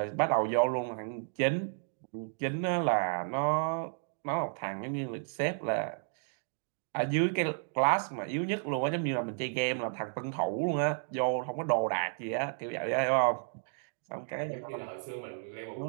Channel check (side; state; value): left; silent; digital silence